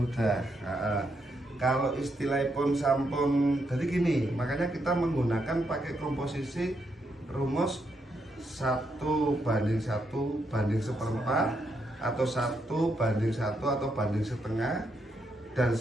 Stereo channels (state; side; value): normal; both; correlation 0.79